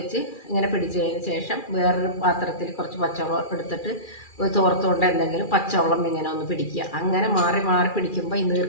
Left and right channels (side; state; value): right; late; 2.4 ms